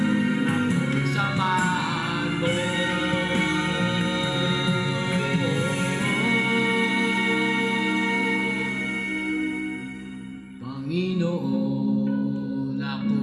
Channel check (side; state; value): both; identical; correlation 1.00